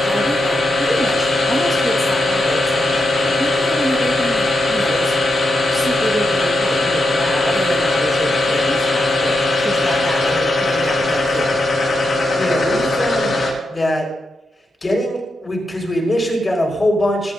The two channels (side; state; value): both; normal; correlation 0.85